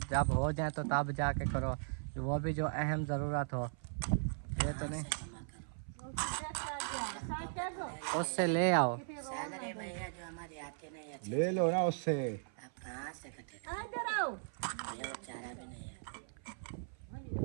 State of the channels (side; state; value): left; silent; 52 dB below the other